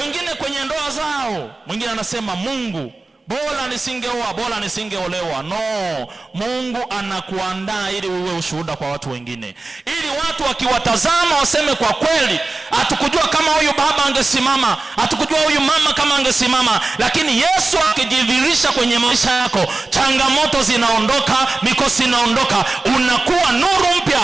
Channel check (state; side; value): quieter; left; 3.4 dB